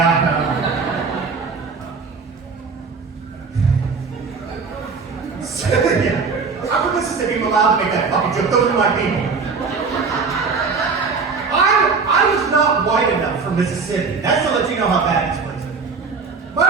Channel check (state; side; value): quieter; left; 4.9 dB